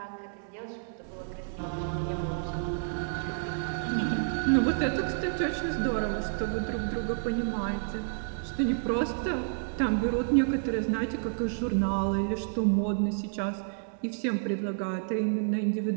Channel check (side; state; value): left; silent; digital silence